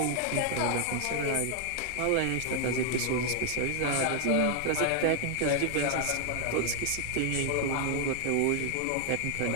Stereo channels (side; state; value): both; different; correlation 0.00